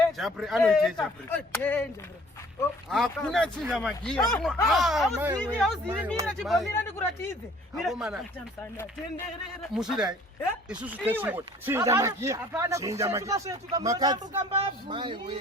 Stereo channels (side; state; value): both; normal; correlation 0.54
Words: Jah Prayzah anoyithe Jah Prayzah. Hakuna chinja magia. Awuzini mina chibomira ndikuratidze. Mira tamsana tenderera. Musidai. Isusu tesiwo. Chinja magia. Chinja magia. Makhadzi. Mai we.